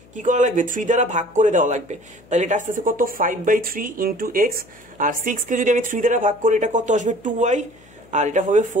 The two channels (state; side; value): noise; left; hum, 27 dB below the sound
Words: 3 দ্বারা ভাগ করে দেওয়া লাগবে। তাহলে এটা আসতেছে কত 5/3 ইন্টু এক্স, আর 6 কে যদি আমি 3 দ্বারা ভাগ করি এটা কত আসবে 2y, আর এটা হবে